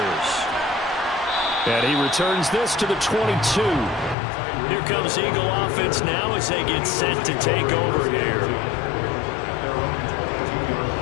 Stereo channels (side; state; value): right; drops out; at 4.2 s